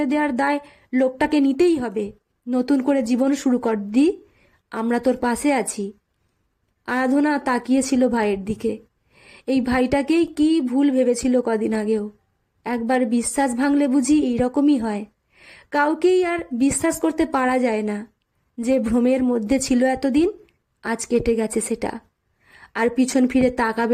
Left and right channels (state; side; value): identical; both; correlation 1.00